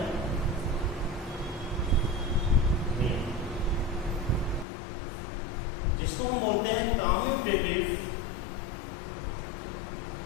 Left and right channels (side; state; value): right; drops out; at 4.7 s